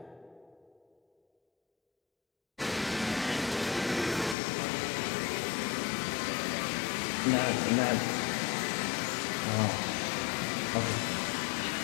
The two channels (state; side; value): drops out; right; at 4.4 s